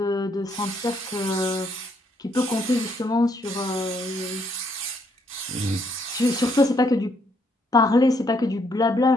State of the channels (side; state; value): both; normal; correlation 0.71